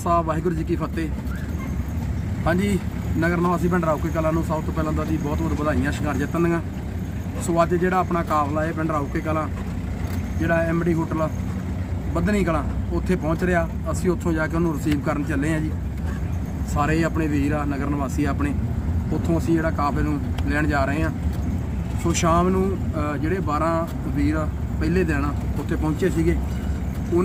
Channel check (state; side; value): identical; both; correlation 1.00